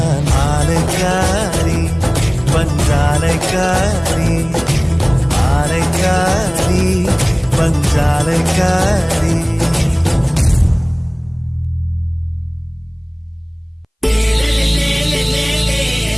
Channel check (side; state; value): both; identical; correlation 1.00